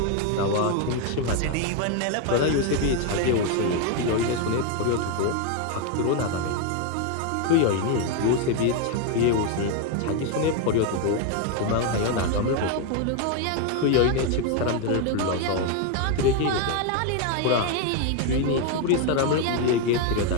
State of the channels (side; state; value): both; different; correlation 0.01